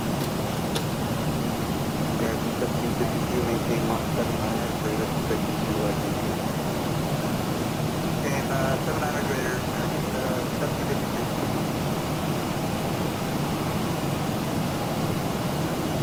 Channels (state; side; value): identical; both; correlation 1.00